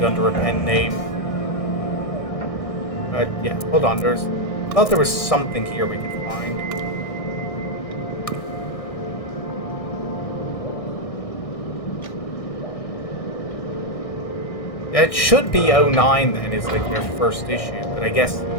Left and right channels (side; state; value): right; late; 1.6 ms